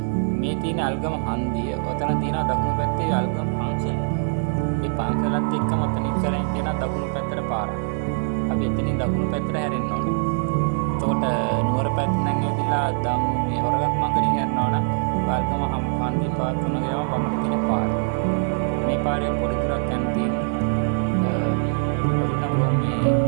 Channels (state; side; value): silent; left; 59 dB below the other